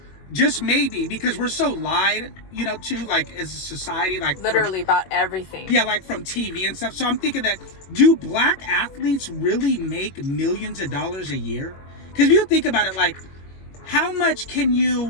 just maybe, because we're so lied, to, like, as a society, like literally about everything. Yeah, like from TV and stuff. So I'm thinking that, do black athletes really make millions of dollars a year? Because if you think about it, like, how much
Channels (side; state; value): right; late; 21 ms